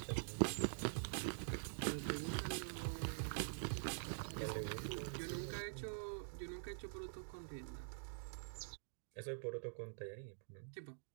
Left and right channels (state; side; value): silent; left; digital silence